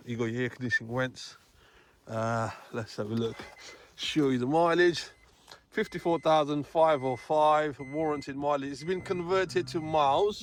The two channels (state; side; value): identical; both; correlation 1.00